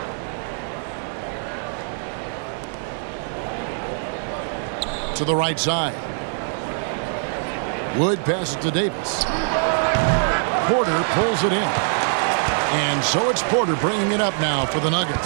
To the right side. Wood passes to Davis. Porter pulls it in. And so it's Porter bringing it up now for the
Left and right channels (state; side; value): silent; left; 63 dB below the other